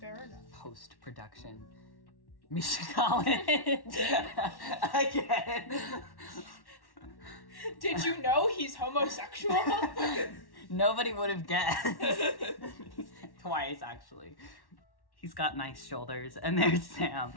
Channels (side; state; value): right; late; 1.1 ms